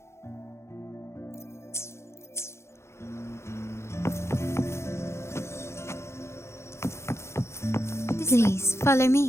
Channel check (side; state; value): right; late; 0.13 ms